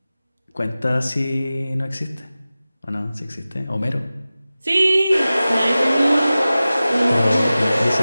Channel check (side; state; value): both; inverted; correlation -0.96